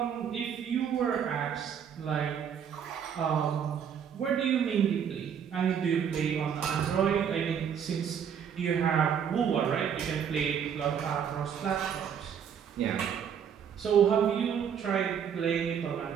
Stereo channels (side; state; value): left; quieter; 8.0 dB